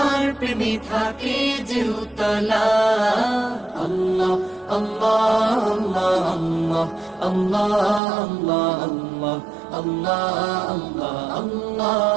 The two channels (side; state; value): left; drops out; at 8.0 s